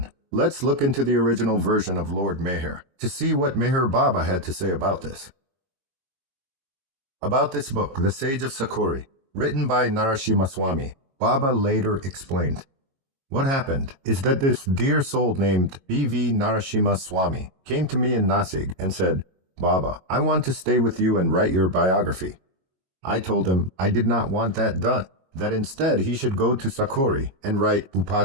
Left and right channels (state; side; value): late; left; 22 ms